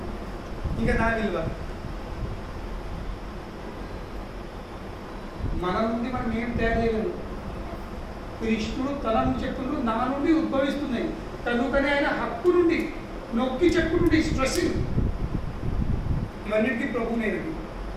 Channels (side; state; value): both; identical; correlation 1.00